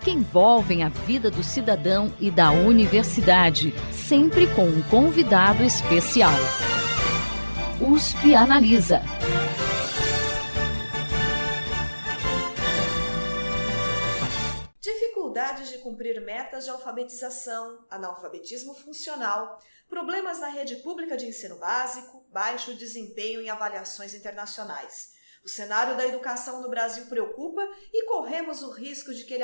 que envolvem a vida do cidadão e da universidade, sempre com um convidado especial. USP Analisa. Dificuldades de cumprir metas de alfabetização, analfabetismo funcional, problemas na rede pública de ensino básico, baixo desempenho em avaliações internacionais. O cenário da educação no Brasil preocupa e corremos o risco de que ele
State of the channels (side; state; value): both; inverted; correlation -1.00